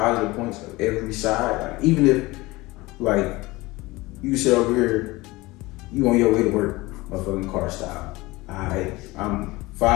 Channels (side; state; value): right; quieter; 21.2 dB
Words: points of every side, like even if like you sit over here, you on your way to work, motherfucking car stop. I'm